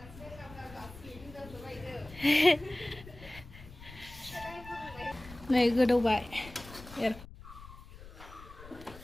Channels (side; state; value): left; noise; rumble, 17 dB below the sound